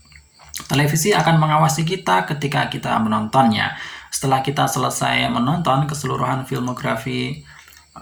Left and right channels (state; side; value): identical; both; correlation 1.00